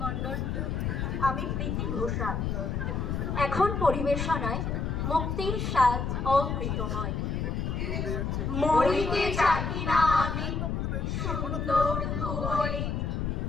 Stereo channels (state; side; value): noise; left; rumble, 1 dB below the sound